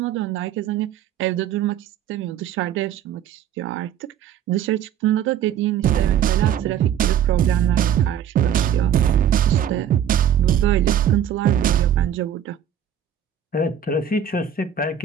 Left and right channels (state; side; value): quieter; left; 9.2 dB